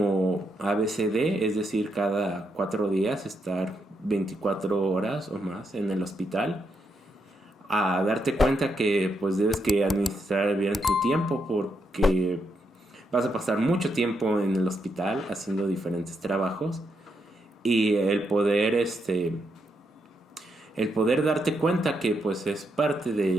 ABCD, es decir, cada 4 días estar 24 horas o más en el hospital, a darte cuenta que pues debes que administrar bien tu tiempo, porque vas a pasar mucho tiempo en el hospital haciendo diferentes trabajos, y el poder darte cuenta que pues es parte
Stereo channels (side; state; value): both; normal; correlation 0.80